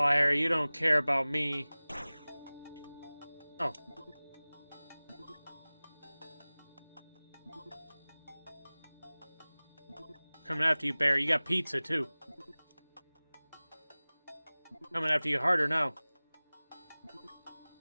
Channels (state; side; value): inverted; both; correlation -1.00